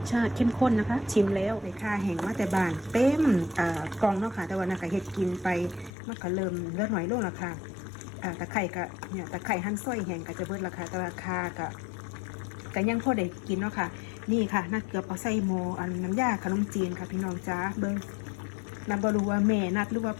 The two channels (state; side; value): drops out; right; at 5.9 s